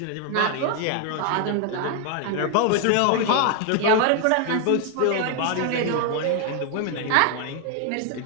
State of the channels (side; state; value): both; different; correlation 0.00